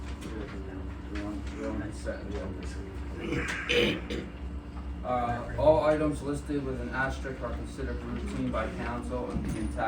All items listed with an asterisk are considered routine by council and being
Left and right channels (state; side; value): identical; both; correlation 1.00